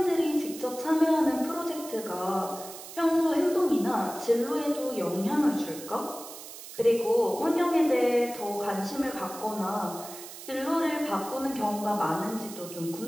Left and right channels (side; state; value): right; noise; hiss, 13 dB below the sound